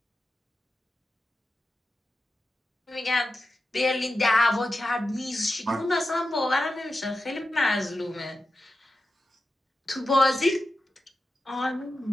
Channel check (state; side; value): normal; both; correlation 0.91